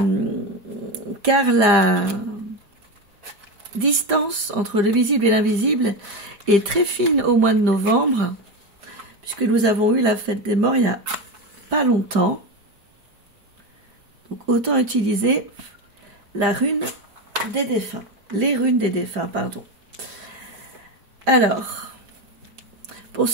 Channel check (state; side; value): late; left; 5.0 ms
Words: la distance entre le visible et l'invisible est très fine au mois de novembre, puisque nous avons eu la fête des morts il y a pas longtemps. Donc autant utiliser la rune des défunts, les runes des défunts, pardon. Alors, pour